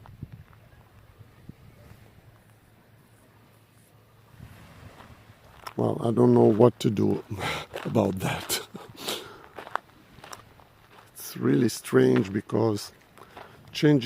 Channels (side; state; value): both; identical; correlation 1.00